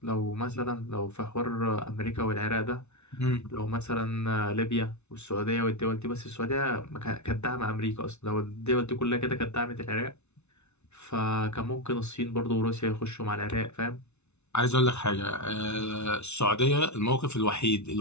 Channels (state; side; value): late; right; 0.81 ms